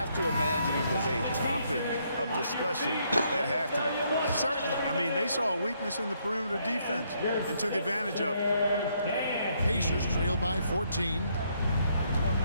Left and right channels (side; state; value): both; inverted; correlation -0.72